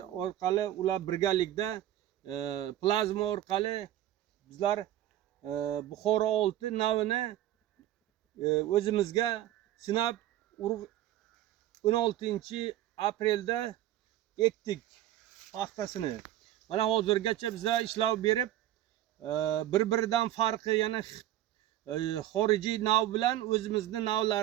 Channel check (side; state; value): left; quieter; 13.4 dB